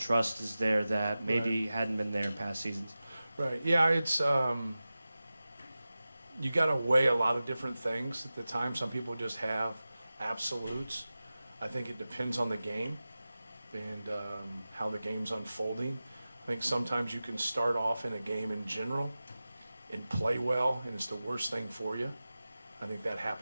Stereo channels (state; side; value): inverted; both; correlation -0.95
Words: is there that maybe Right. hadn't been there in past seasons? Right. Yeah, it's you got to weigh a lot of different things at the time. Some people just have absolutes. I think it depends on the game and how the game's unfolding. I think sometimes you can start off in a game in general and play well, and it's the worst thing for you. I think that